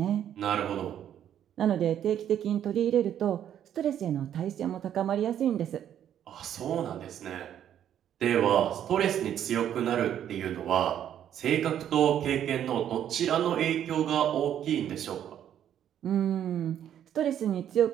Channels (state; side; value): quieter; left; 10.2 dB